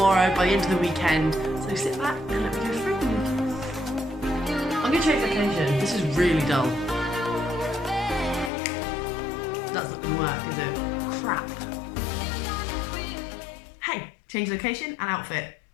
by the end of the weekend. So sit back and let me go through them. I'm going to change location. This is really dull. That's not going to work, is it? Crap. Hey, change location and outfit.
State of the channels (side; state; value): right; drops out; at 8.5 s